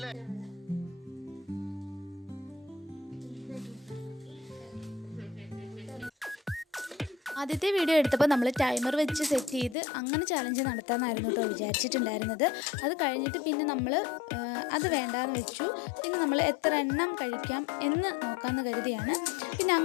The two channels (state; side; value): drops out; right; at 9.8 s